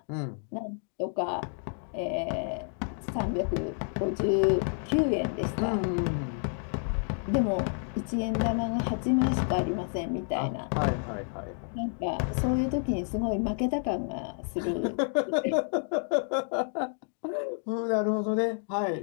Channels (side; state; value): right; silent; 58 dB below the other